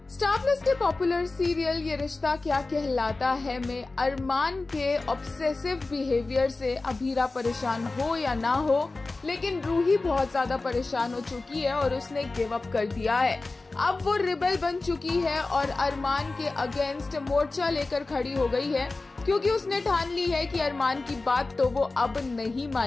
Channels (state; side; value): quieter; right; 3.4 dB